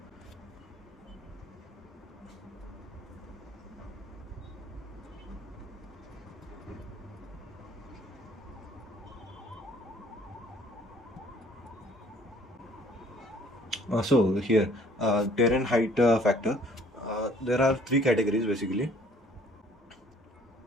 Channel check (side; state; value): both; normal; correlation 0.57